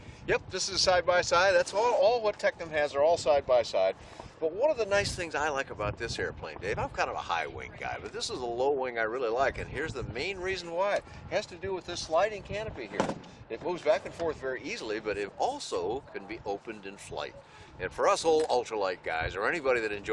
Yep, this is side-by-side. That's all what TECNAM has. They're all side-by-side. But one of the nice things I like about this airplane, Dave, I'm kind of a high-wing guy, but this is a low-wing I really like, and here's the main reason why. It has to do with this sliding canopy here. It moves back and forth very easily, but it also can be opened in flight. And for us old ultralight guys, or anybody that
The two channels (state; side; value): identical; both; correlation 1.00